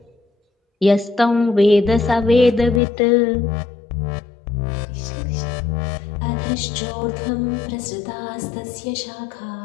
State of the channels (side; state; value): right; drops out; at 2.8 s